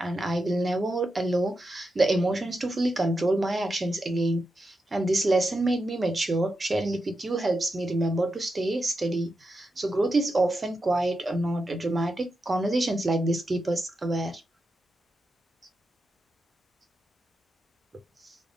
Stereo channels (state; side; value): normal; both; correlation 0.88